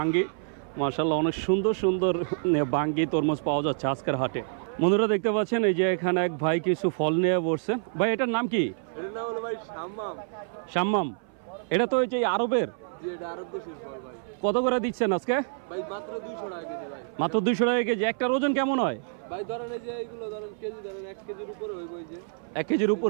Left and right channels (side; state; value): left; silent; 57 dB below the other